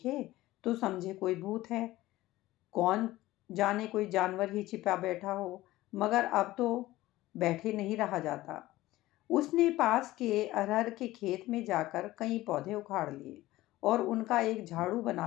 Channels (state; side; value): quieter; right; 17.1 dB